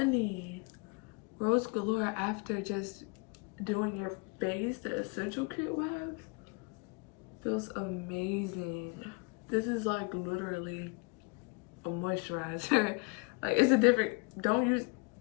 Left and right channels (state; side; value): quieter; right; 31.7 dB